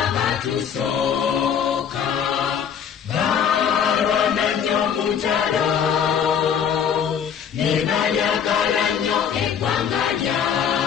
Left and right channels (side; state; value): right; quieter; 7.9 dB